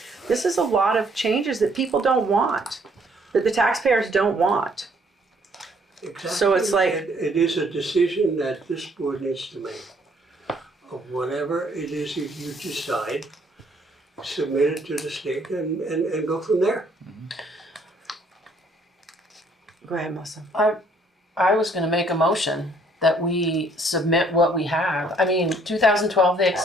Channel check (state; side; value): normal; both; correlation 0.64